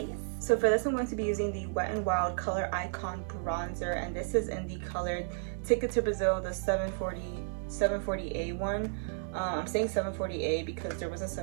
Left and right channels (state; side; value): silent; left; digital silence